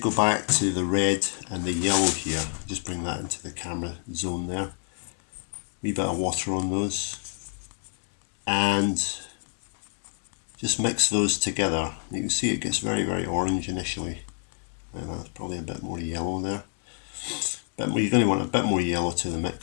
back to the red and the yellow here, just bring that into the camera zone there, wee bit of water on those, and just mix those together. You can see it gets very orange initially, and that's probably a bit more yellow there. But you're going to want a bit more yellow to the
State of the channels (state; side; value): silent; right; 59 dB below the other